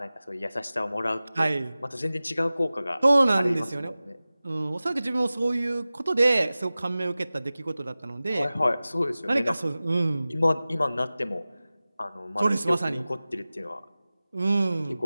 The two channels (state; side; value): inverted; both; correlation -0.97